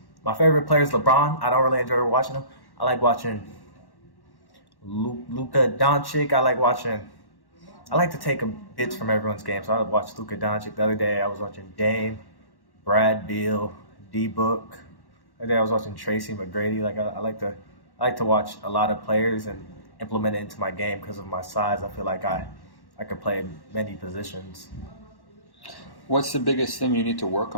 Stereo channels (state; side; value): late; right; 1.1 ms